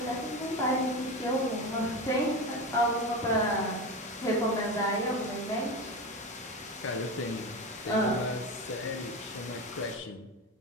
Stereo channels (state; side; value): normal; both; correlation 0.22